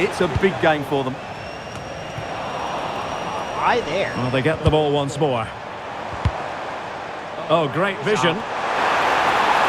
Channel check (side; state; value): both; identical; correlation 1.00